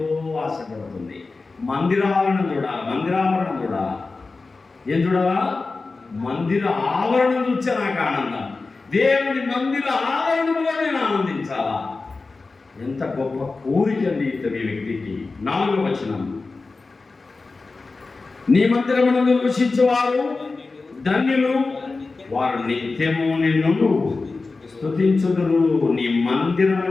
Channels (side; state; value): right; quieter; 3.8 dB